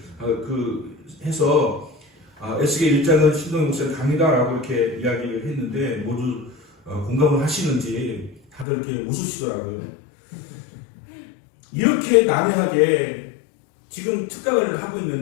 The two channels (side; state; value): right; drops out; at 8.7 s